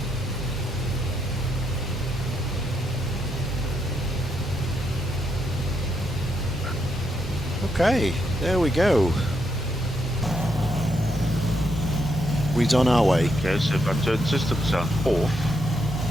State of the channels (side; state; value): both; normal; correlation 0.79